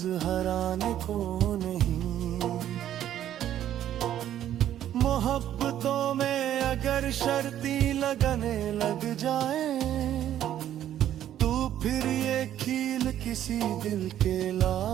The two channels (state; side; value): quieter; left; 11.4 dB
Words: हराने को नहीं। मोहब्बतों में अगर शर्ती लगने लग जाए, तो फिर ये खील किसी दिल के